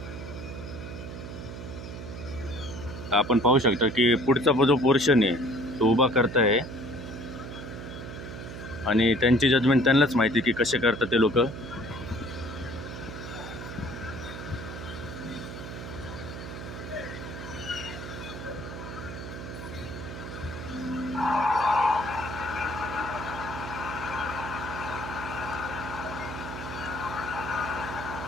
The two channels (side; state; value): right; noise; hum, 10 dB below the sound